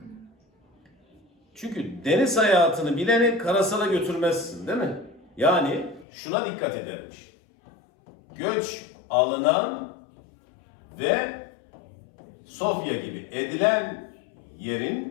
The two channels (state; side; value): drops out; right; at 6.1 s